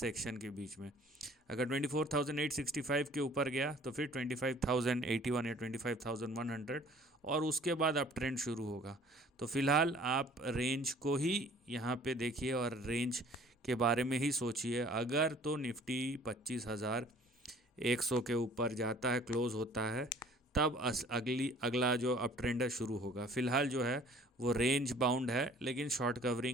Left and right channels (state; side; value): normal; both; correlation 0.53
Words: के बीच में। अगर 24,865 के ऊपर गया तो फिर 25,081 या 25,100, और उसके बाद अप ट्रेंड शुरू होगा। तो फिलहाल आप रेंज को ही यहाँ पे देखिए और रेंज के बारे में ही सोचिए। अगर तो निफ्टी 25,100 के ऊपर जाता है, क्लोज होता है, तब अगला जो अप ट्रेंड है शुरू होगा। फिलहाल जो है वो रेंज बाउंड है, लेकिन शॉर्ट